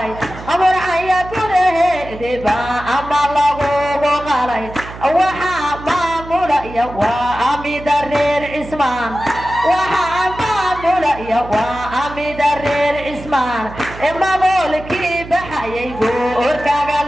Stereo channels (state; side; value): noise; right; hum, 14 dB below the sound